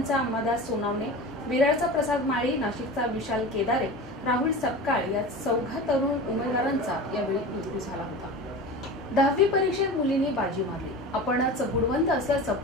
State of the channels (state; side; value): normal; both; correlation 0.32